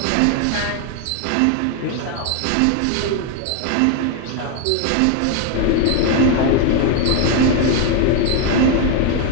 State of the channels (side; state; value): both; different; correlation 0.01